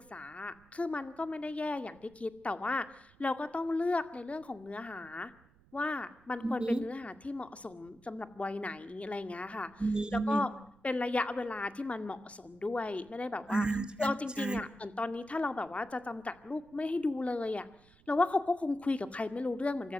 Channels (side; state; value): right; noise; rumble, 28 dB below the sound